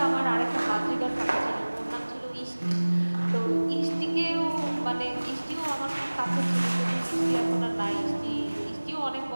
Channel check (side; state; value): both; inverted; correlation -1.00